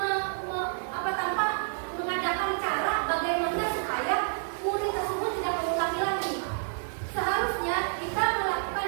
tanpa mengadakan cara bagaimana supaya murid tersebut tidak mengulangi lagi. Seharusnya kita melakukan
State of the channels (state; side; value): silent; left; digital silence